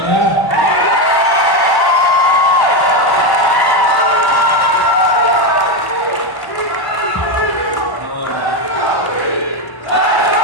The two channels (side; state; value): right; late; 1.1 ms